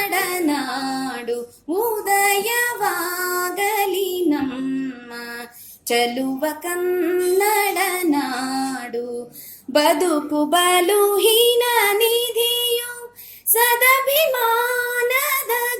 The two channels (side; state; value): both; identical; correlation 1.00